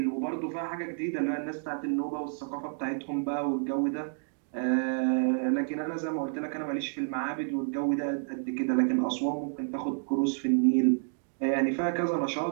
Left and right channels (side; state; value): left; silent; digital silence